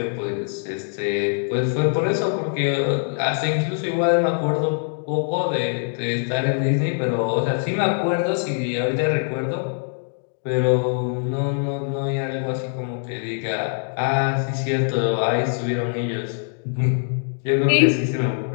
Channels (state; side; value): silent; right; digital silence